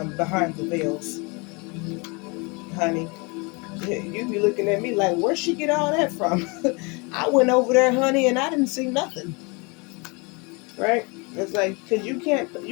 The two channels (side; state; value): right; quieter; 29.6 dB